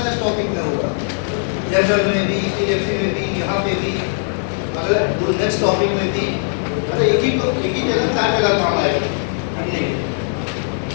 टॉपिक में होगा, जनरल में भी, इलेक्ट्री में भी, यहाँ पे भी, अगर नेक्स्ट टॉपिक में भी, मतलब एक ही जगह चार जगह काम आएगा।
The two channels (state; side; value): silent; right; digital silence